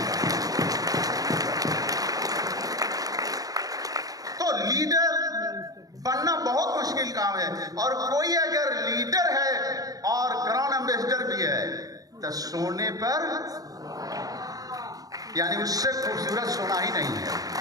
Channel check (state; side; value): late; left; 0.18 ms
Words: तो लीडर बनना बहुत मुश्किल काम है। और कोई अगर लीडर है और क्राउन एम्बेसडर भी है तो सोने पर, यानी उससे खूबसूरत सोना ही नहीं है।